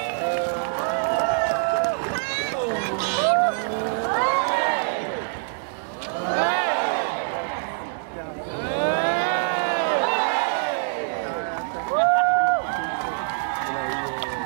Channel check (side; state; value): left; silent; digital silence